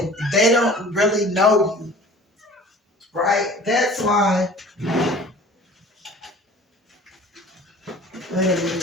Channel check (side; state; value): both; normal; correlation 0.45